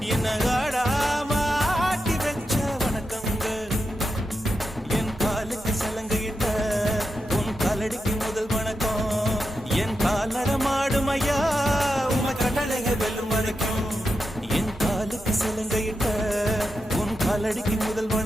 என்ன ஆடாம ஆட்டி வச்ச வணக்கங்க. என் காலுக்கு சலங்கையிட்ட உன் காலடிக்கு முதல் வணக்கம். என் கால் நடமாடும் ஐயா உம கட்டளைக வெல்லும் வரைக்கும். என் காலுக்கு சலங்கையிட்ட உன் காலடிக்கு முதல்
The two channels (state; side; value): normal; both; correlation 0.87